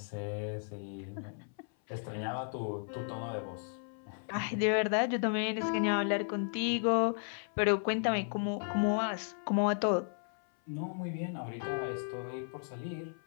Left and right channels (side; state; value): right; silent; 55 dB below the other